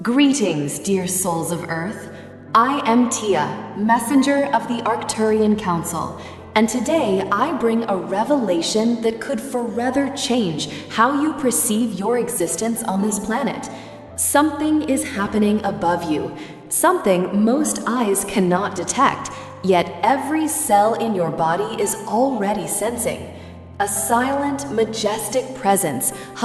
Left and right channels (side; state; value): both; identical; correlation 1.00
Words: Greetings, dear souls of Earth. I am Tia, messenger of the Arcturian Council, and today I bring a revelation that could forever change how you perceive your existence on this planet. Something is happening above you, something most eyes cannot detect, yet every cell in your body is already sensing. A silent, majestic presence